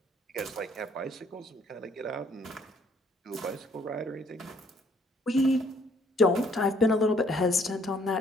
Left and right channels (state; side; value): normal; both; correlation 0.63